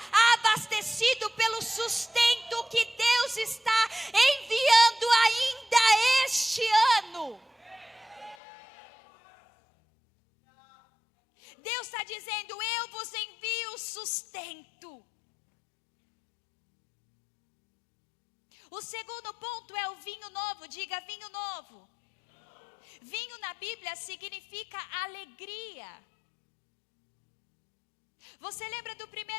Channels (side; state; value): right; drops out; at 8.3 s